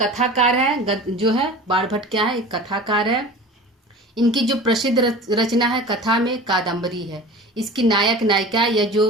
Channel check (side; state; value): both; normal; correlation 0.38